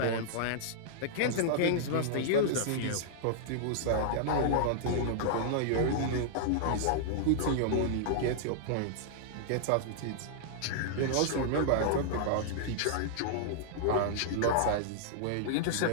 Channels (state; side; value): different; both; correlation -0.02